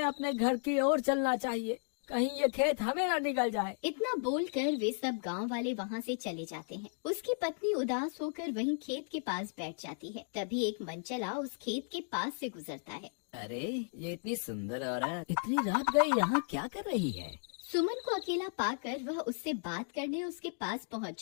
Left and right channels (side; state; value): right; silent; 54 dB below the other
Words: अपने घर की ओर चलना चाहिए, कहीं ये खेत हमें न निगल जाए। इतना बोलकर वे सब गांव वाले वहाँ से चले जाते हैं। उसकी पत्नी उदास होकर वहीं खेत के पास बैठ जाती है। तभी एक मनचला उस खेत के पास से गुजरता है। अरे ये इतनी सुंदर औरत इतनी रात गई यहाँ क्या कर रही है? सुमन को अकेला पाकर वह उससे बात करने उसके पास पहुंच